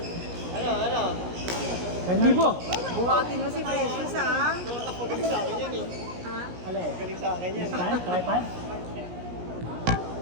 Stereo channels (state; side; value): late; left; 17 ms